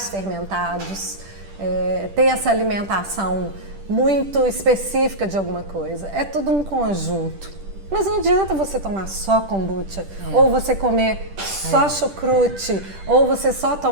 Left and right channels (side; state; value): left; late; 10 ms